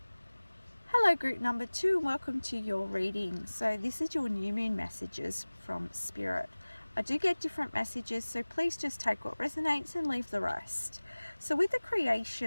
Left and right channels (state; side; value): inverted; both; correlation -1.00